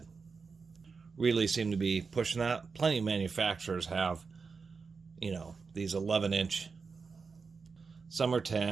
Really seem to be pushing that. Plenty of manufacturers have, you know, these 11 inch. Some are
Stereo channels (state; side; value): quieter; left; 5.0 dB